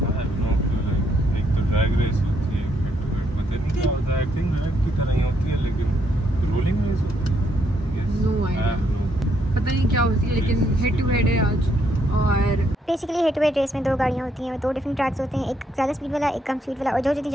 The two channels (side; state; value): both; normal; correlation 0.74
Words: एक तो ड्रैग रेस होती है, हेड टू हेड पता नहीं क्या होता है। आई थिंक ड्रैग की तरह ही होती है, लेकिन रोलिंग रेस होती है। नो आइडिया, पता नहीं क्या होती है, लेकिन हेड टू हेड है आज। और basically head to head race में दो गाड़ियाँ होती हैं, दो डिफरेंट ट्रैक्स होते हैं, एक ज़्यादा स्पीड वाला, एक कम स्पीड वाला, और जो जितनी